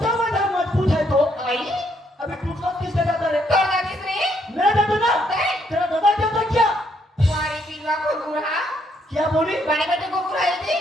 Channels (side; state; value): both; normal; correlation 0.72